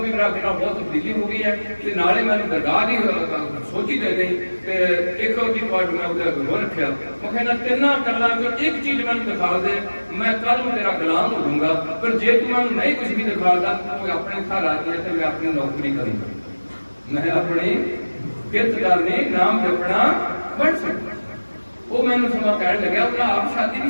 ਵੀ ਮੇਰਾ ਬਹੁਤ ਤਬਦੀਲੀ ਹੋ ਗਈ ਹੈ। ਤੇ ਨਾਲੇ ਮੈਨੂੰ ਦਰਗਾਹ ਦੀ ਸੋਚੀ ਦੇ ਗਈ ਤੇ ਇੱਕ ਉਹਦੀ ਪਾਰਟ ਮੈਂ ਉਹਦੇ ਅੱਗੇ ਹੋ ਰੱਖਿਆ। ਮੈਂ ਕਹਿੰਦਾ ਤਿੰਨਾਂ ਗੱਲਾਂ ਚੋਂ ਇੱਕ ਚੀਜ਼ ਮੈਨੂੰ ਦਿਖਾ ਦੇ, ਮੈਂ ਕੱਲ ਨੂੰ ਤੇਰਾ ਗੁਲਾਮ ਹੋ ਜਾਊਂਗਾ। ਪਰ ਜੇ ਤੂੰ ਮੈਨੂੰ ਨਹੀਂ ਕੁਝ ਵੀ ਦਿਖਾਦਾ, ਤੂੰ ਆਪਣੇ ਘਰ ਆ ਗਿਆ ਤੇ ਮੈਂ ਆਪਣੀ ਨੌਕਰੀ ਕਰੂੰਗਾ, ਮੈਂ ਆਪਣੀ ਕਿਰਤ ਕਰਨੀ, ਨਾਮ ਜਪਣਾ ਬਣ ਸਕਦਾ। ਉਹ ਮੈਨੂੰ ਸਮਾਂ ਕਹਿਣ ਲੱਗਿਆ, ਉਹਨਾਂ ਆਪ ਸ਼ਾਦੀ ਨਹੀਂ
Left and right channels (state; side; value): inverted; both; correlation -1.00